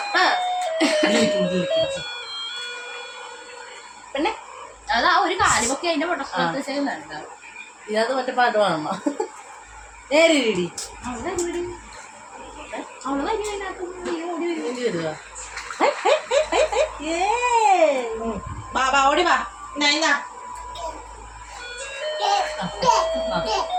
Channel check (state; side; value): identical; both; correlation 1.00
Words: പിന്നെ അതാ ഒരു കാലുമൊക്കെ അതിന്റെ പൊട്ട ചെയ്യുന്നുണ്ട്. ഇതിനകത്ത് മറ്റേ പാട്ട് വേണമ്മ നേരിടി വരുക ബാബാ ഓടി വാ